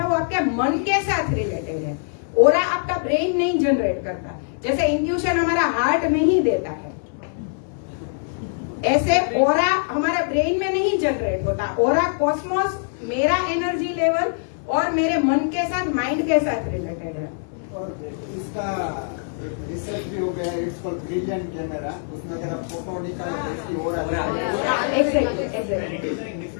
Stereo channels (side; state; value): right; silent; digital silence